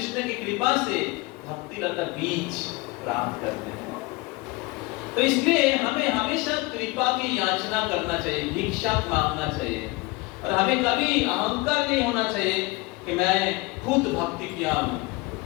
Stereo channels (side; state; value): right; quieter; 23.2 dB